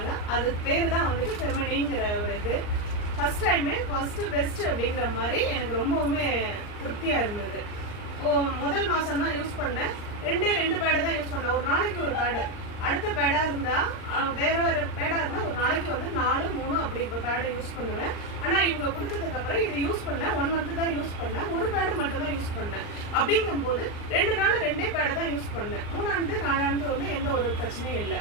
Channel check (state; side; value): late; right; 39 ms